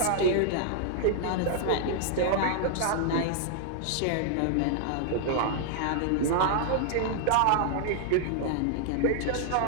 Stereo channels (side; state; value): both; different; correlation 0.00